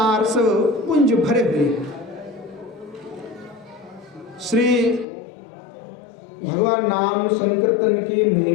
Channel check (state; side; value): drops out; right; at 5.1 s